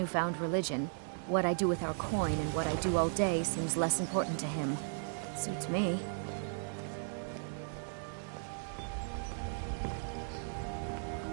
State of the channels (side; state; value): left; silent; 54 dB below the other